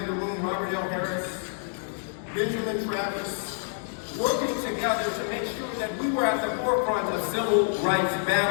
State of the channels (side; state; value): right; silent; digital silence